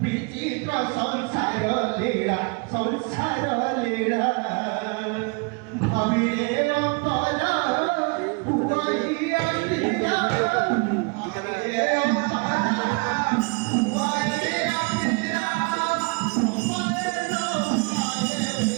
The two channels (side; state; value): left; quieter; 31.8 dB